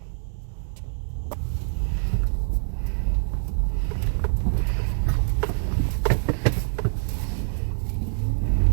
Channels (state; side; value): silent; left; digital silence